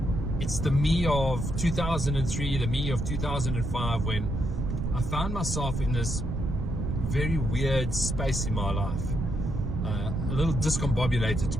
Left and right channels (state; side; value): noise; right; rumble, 2 dB below the sound